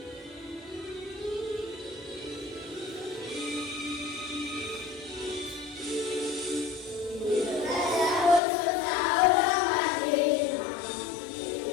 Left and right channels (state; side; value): drops out; right; at 8.4 s